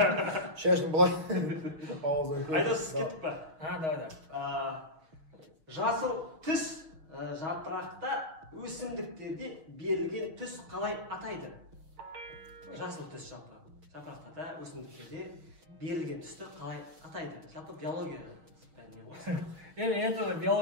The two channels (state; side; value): late; left; 6.3 ms